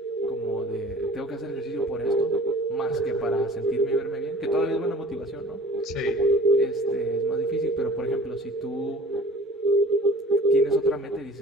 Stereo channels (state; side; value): normal; both; correlation 0.45